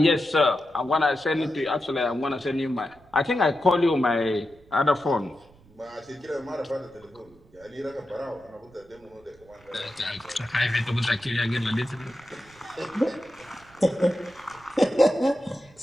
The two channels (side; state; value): right; noise; rumble, 28 dB below the sound